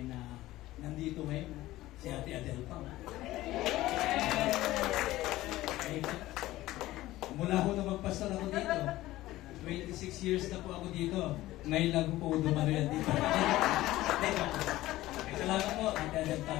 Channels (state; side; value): quieter; right; 16.5 dB